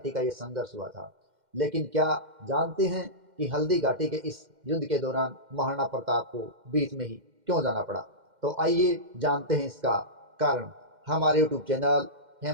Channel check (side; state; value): left; late; 2.1 ms